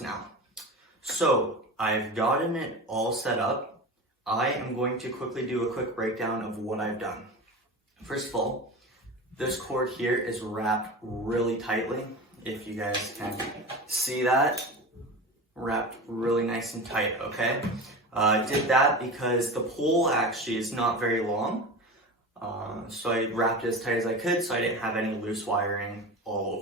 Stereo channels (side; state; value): both; normal; correlation 0.29